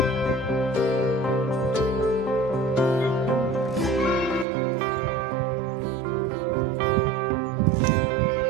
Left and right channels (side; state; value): left; drops out; at 4.5 s